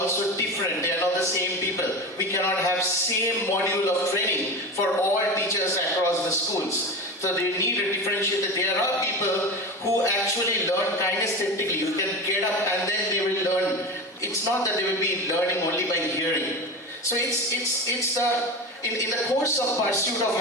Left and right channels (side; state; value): both; normal; correlation 0.27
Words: different. They are not the same people. We cannot have same module of training for all teachers across the schools. So they need a differentiated. There are people who actually learn kinesthetically. You can get up and then they will learn. It's not that they will be learning only by hearing. So it's in the course of pursuit of